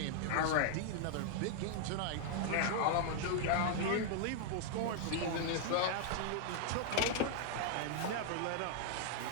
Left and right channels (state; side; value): different; both; correlation -0.01